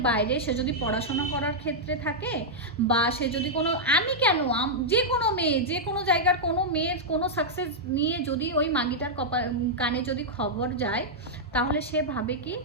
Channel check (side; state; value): both; normal; correlation -0.07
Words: বাইরে সে যদি পড়াশোনা করার ক্ষেত্রে থাকে, বা সে যদি কোনো, আমি কেন, যে কোনো মেয়ে, যে কোনো জায়গার কোনো মেয়ের কোনো সাকসেস নিয়ে যদি ওই মাগিটার কানে যদি খবর যায়, তাহলে সে ভাবে কি